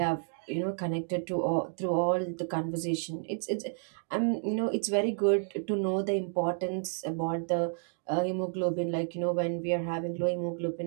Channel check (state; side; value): silent; left; 57 dB below the other